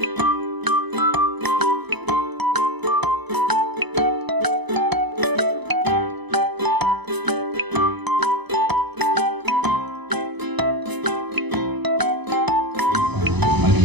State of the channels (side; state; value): left; late; 0.99 ms